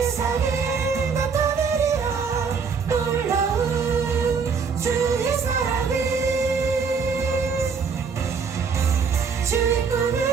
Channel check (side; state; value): left; quieter; 5.7 dB